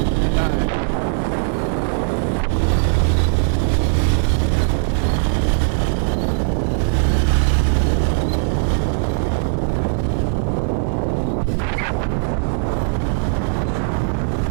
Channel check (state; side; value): silent; left; digital silence